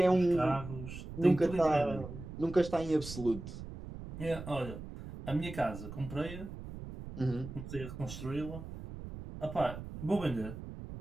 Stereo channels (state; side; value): noise; right; rumble, 11 dB below the sound